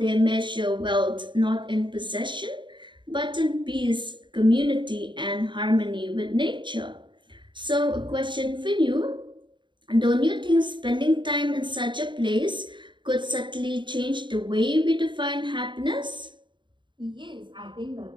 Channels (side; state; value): left; late; 0.23 ms